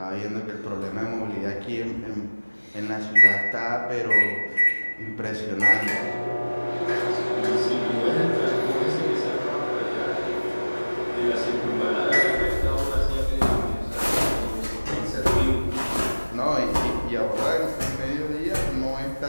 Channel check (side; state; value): both; inverted; correlation -1.00